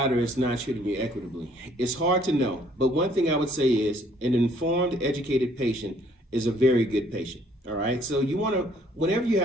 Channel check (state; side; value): normal; both; correlation 0.62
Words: is not treating you equitably? It's hard to know, but one thing I would say is an informed, educated patient is a very good patient. All right. So you want to, whenever you